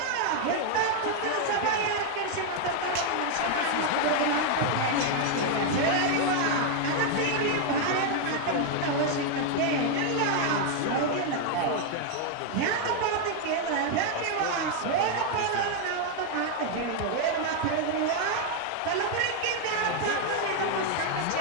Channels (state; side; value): different; both; correlation 0.00